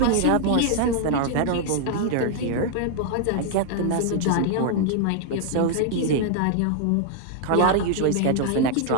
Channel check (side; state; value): both; different; correlation 0.00